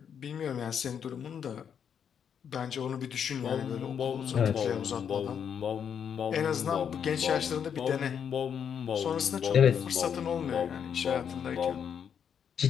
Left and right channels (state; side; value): quieter; right; 7.9 dB